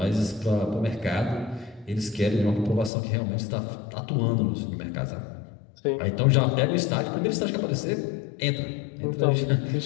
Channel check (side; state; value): right; drops out; at 2.9 s